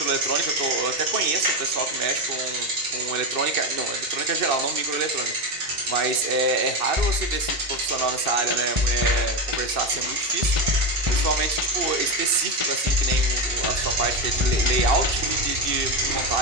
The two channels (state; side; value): late; left; 2.6 ms